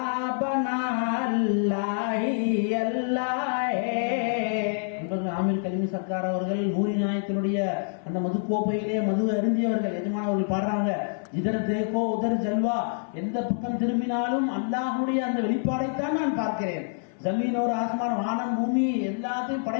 बना अल्लाह ही अल्लाह है। ஆமீர் கலிமி சர்க்கார் அவர்கள் நூரி நாயத்தினுடைய அந்த மது கோப்பையிலே மது அருந்தியவர்கள் எஜமானவர்கள் பாடுறாங்க, இதர் தேக்கோ உதர் ஜல்வா, எந்த பக்கம் திரும்பினாலும் அல்லாஹ்வுடைய அந்த வெளிப்பாடைத்தான் நான் பார்க்கிறேன்। ஜமீன் ஒரு ஆஸ்மான், வானம் பூமி எல்லாத்தையும்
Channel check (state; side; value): silent; right; 58 dB below the other